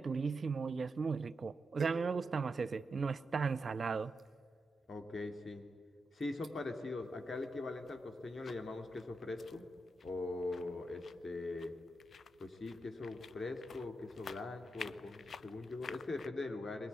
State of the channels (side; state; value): both; normal; correlation 0.86